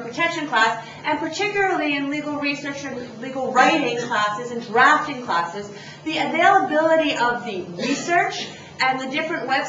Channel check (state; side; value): identical; both; correlation 1.00